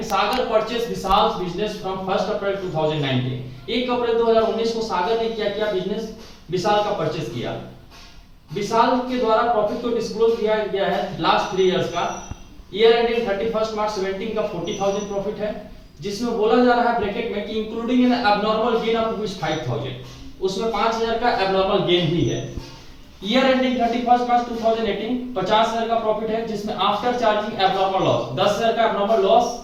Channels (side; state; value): both; identical; correlation 1.00